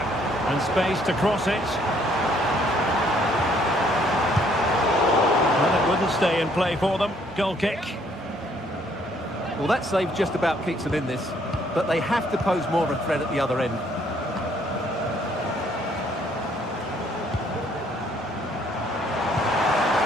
And space to cross it. Wouldn't stay in play for them. Goal kick. Well, that save just about keeps them in this, but they have to pose more of a threat at the other end.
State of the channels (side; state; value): both; normal; correlation 0.65